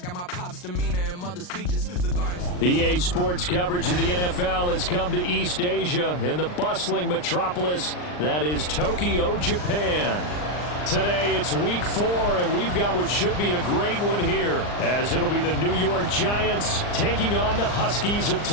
my pop's demeanor and mother speeches. The gardens. EA Sports coverage of the NFL has come to East Asia in the bustling metropolis that is Tokyo, Japan. Today it's week 4, and we've got what should be a great one here, as it'll be the New York Giants taking on the Huskies of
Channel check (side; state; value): right; late; 39 ms